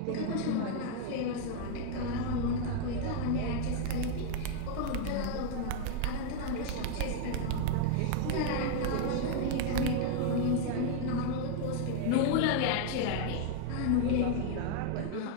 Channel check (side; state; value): both; different; correlation 0.00